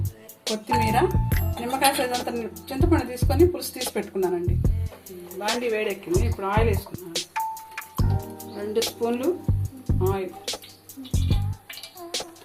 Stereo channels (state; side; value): identical; both; correlation 1.00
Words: కొత్తిమీర, నిమ్మకాయ సైజంత చింతపండు తీసుకొని పులుసు తీసి పెట్టుకున్నానండి. బాండి వేడెక్కింది. ఇప్పుడు ఆయిల్ వేసుకున్నాను. 2 స్పూన్లు ఆయిల్.